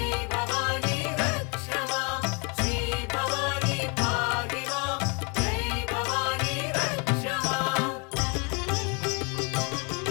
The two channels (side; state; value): right; quieter; 33.7 dB